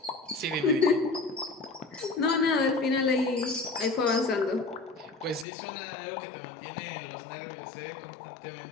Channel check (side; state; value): right; drops out; at 5.5 s